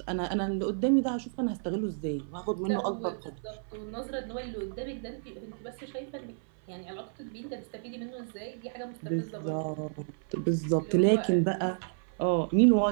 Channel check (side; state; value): left; silent; 56 dB below the other